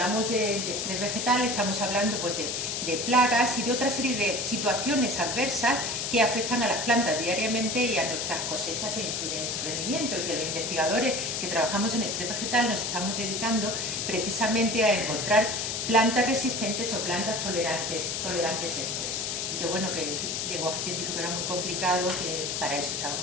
de estrés vegetal estamos hablando pues de plagas y de otra serie de situaciones adversas que afectan a las plantas diariamente y a nuestras cosechas e influyen en su rendimiento, y que los investigadores que trabajamos en estrés vegetal nos estamos dedicando precisamente a encontrar plantas resistentes o plantas tolerantes a estrés. Y que bueno, que el lenguaje científico era muy complicado, que para eso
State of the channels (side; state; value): left; noise; hiss, 2 dB below the sound